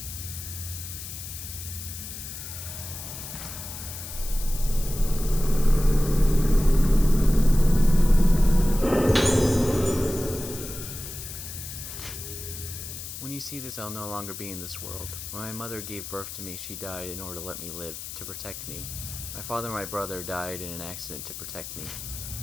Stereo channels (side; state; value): left; noise; hiss, 9 dB below the sound